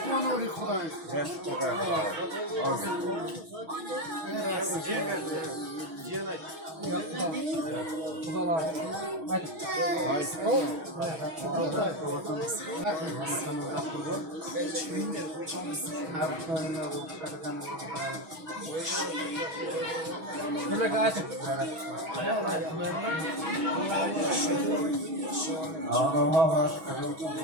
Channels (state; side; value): late; left; 6.3 ms